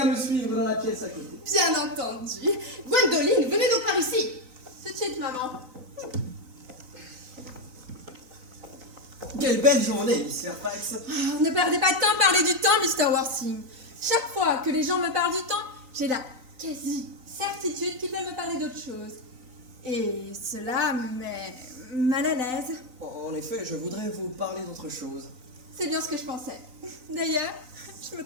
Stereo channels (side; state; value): left; late; 3.9 ms